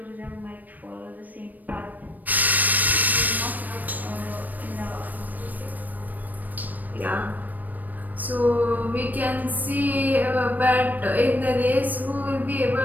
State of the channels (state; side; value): late; left; 0.085 ms